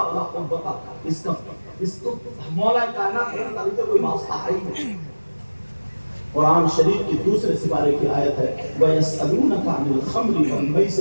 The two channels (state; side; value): inverted; both; correlation -1.00